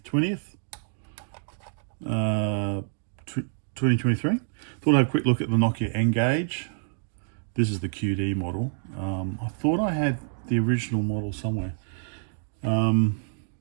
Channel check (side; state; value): left; silent; digital silence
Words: 20th, 2023. Thought I'd have a quick look at the Nokia N-Gage. This is the QD model. I thought I had the original model somewhere. When